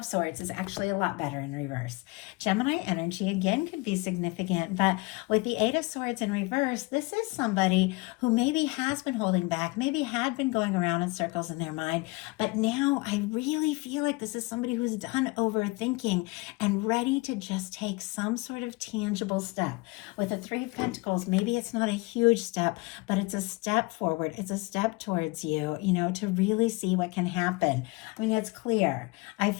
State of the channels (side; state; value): right; quieter; 25.0 dB